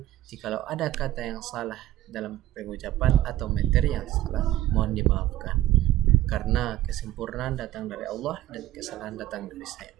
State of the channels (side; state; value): left; quieter; 14.5 dB